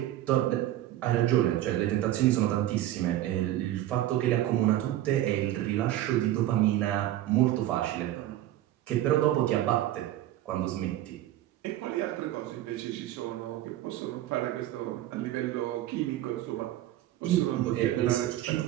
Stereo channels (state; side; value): quieter; left; 13.8 dB